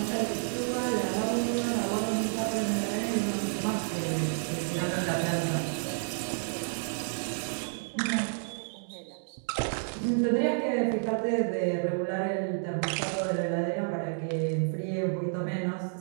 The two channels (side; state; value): left; silent; digital silence